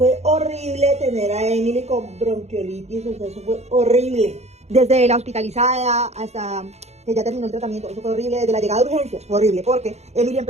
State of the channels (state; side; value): late; left; 0.32 ms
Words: horrible tener a Emily con bronquiolitis, o sea, eso fue horrible. Desde la hospitalizada hasta que ya terminó el tratamiento, eso fue horrible. Desde la llegada de urgencias, fue horrible, porque Emily